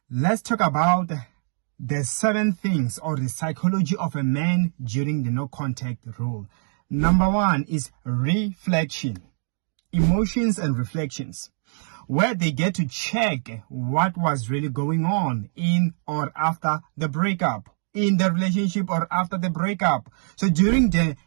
Let's talk about the 7 things or the psychology of a man during the no contact rule. Number 1 is reflection, emotions and reflections, where they get to check what was really going on in or after the breakup, in the relationship or after the breakup. So during the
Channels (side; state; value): left; silent; 61 dB below the other